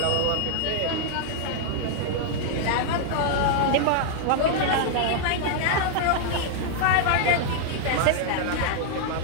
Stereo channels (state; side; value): different; both; correlation -0.01